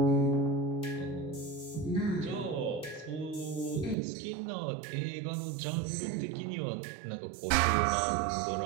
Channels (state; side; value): drops out; left; at 4.0 s